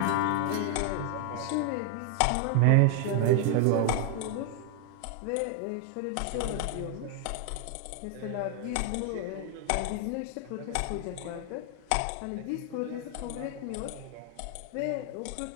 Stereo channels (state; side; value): different; both; correlation 0.00